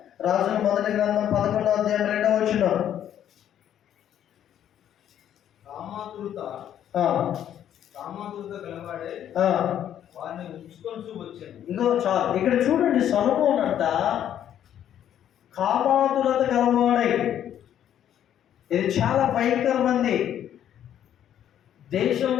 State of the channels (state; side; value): quieter; right; 10.4 dB